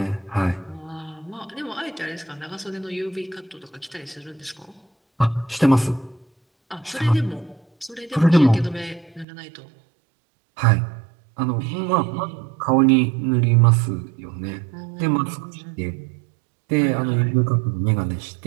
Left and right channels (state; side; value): drops out; left; at 9.2 s